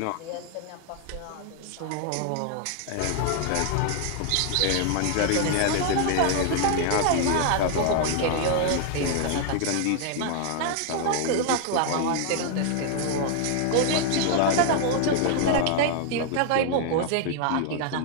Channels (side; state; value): both; different; correlation 0.00